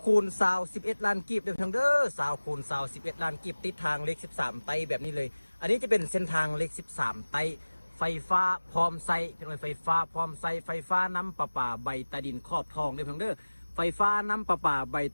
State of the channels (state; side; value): inverted; both; correlation -1.00